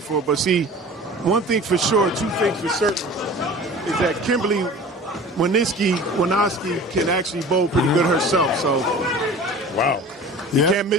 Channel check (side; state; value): both; normal; correlation 0.40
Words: him. But see, one thing for sure, two things for certain, is that Kimberly Winoski can actually bowl pretty good herself. So, wow. You can't